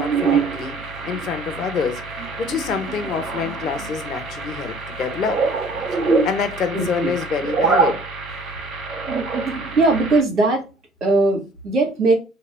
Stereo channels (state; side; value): normal; both; correlation 0.53